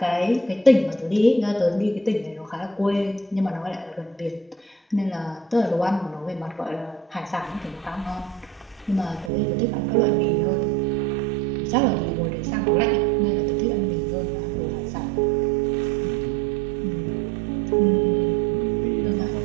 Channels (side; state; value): left; drops out; at 9.3 s